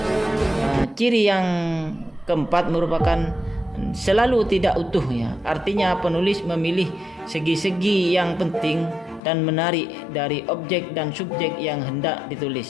ciri yang keempat merupakan selalu tidak utuh ya. Artinya penulis memilih segi-segi yang penting dan menarik dari objek dan subjek yang hendak ditulis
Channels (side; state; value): right; drops out; at 9.2 s